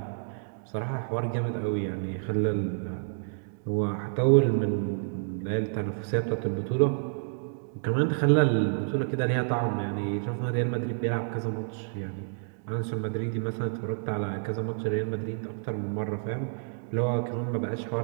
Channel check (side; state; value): left; silent; digital silence